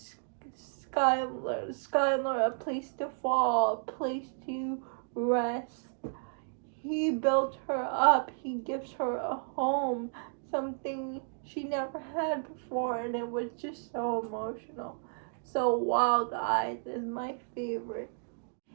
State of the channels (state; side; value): silent; left; digital silence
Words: Skylar a place to fall, a place to rest. He built her up. He gives her a home, something she never had before, and it was just so emotional. So Wild Eyes is my favorite.